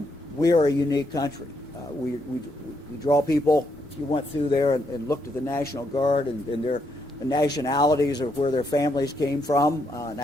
We are a unique country. We draw people. If you went through there and looked at the National Guard and the nationalities of where their families came from, and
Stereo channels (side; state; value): both; normal; correlation 0.77